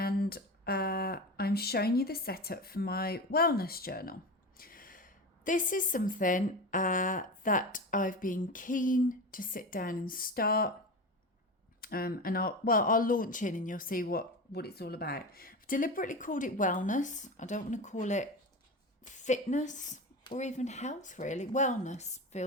I'm showing you the setup for my wellness journal. This is something that I've been keen to sit down and start. And I'll launch in and you'll see what it's all about. I've deliberately called it wellness. I don't want to call it fitness or even health, really. Wellness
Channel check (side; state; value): both; normal; correlation 0.26